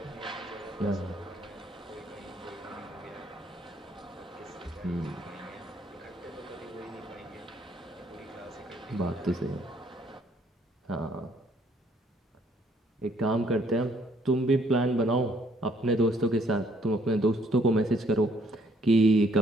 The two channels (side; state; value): both; normal; correlation 0.66